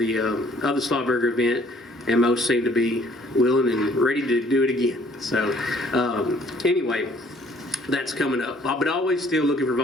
Slowbury event, and most seem to be willing and ready to do it again. So anyway, that's coming up, but always still looking for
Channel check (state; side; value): normal; both; correlation 0.59